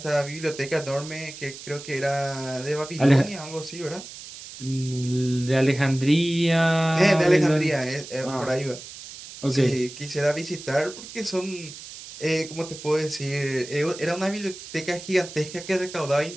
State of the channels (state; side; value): noise; right; hiss, 14 dB below the sound